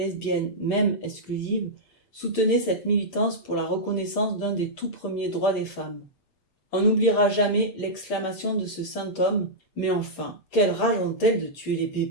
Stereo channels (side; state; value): right; late; 7.2 ms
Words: même exclusives, soutenaient cette militance pour la reconnaissance d'un des tout premiers droits des femmes. On n'oubliera jamais l'exclamation de ce saint homme « Mais enfin, quelle rage ont-elles de tuer les